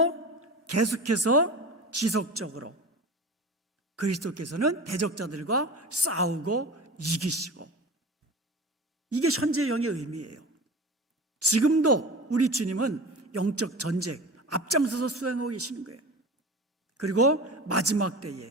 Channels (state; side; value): normal; both; correlation 0.33